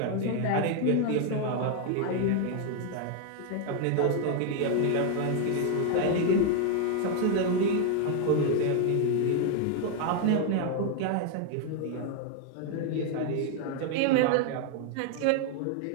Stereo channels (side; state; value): both; different; correlation 0.00